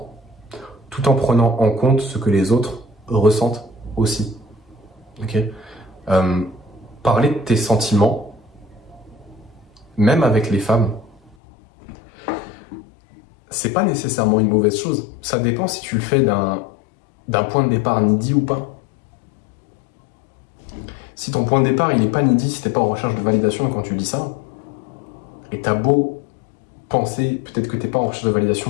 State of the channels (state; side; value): drops out; right; at 11.4 s